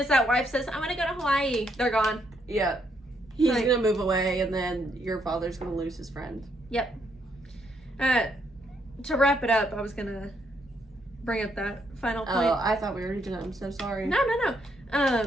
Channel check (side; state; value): both; normal; correlation 0.75